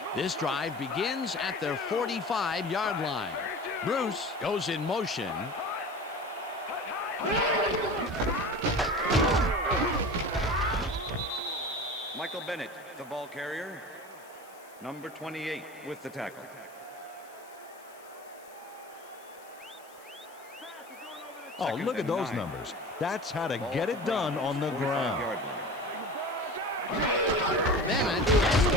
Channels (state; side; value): noise; left; hiss, 24 dB below the sound